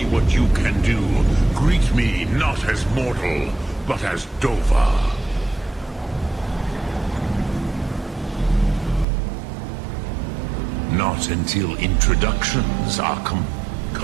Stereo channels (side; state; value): left; drops out; at 9.1 s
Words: What you can do. Greet me not as mortal, but as Dova. Not until introductions are Come,